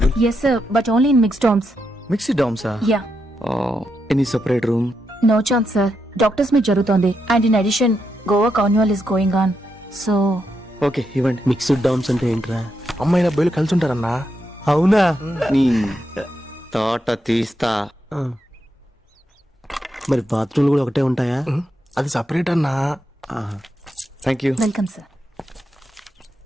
Yes sir, but only in mixed dorms. Mixed డామ్సా? Yeah. Any separate room? No chance sir. Doctors meet జరుగుతోంది. And in addition, Goa carnival is going on. So. Okay ఇవ్వండి. Mixed DOMS అంటే ఏంట్రా? అమ్మాయిల అబ్బాయిలు కలిసి ఉంటారన్నా. అవునా? నీ తోట తీస్తా. మరి బాత్రూమ్లు కూడా ఒకటే ఉంటాయా? అది సపరేట్ అన్నా. Thank you. Welcome sir.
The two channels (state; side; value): normal; both; correlation 0.83